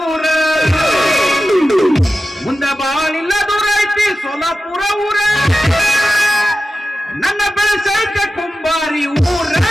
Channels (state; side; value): normal; both; correlation 0.93